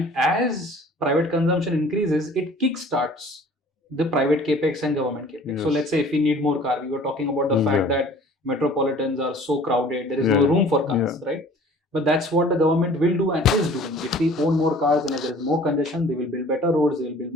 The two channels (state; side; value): normal; both; correlation 0.49